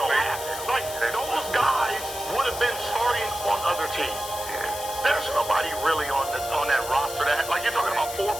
don't have, like, those guys would have been starting on other teams. There's nobody really on that roster that, like, you're talking about 4 or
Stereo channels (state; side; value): noise; left; hiss, 9 dB below the sound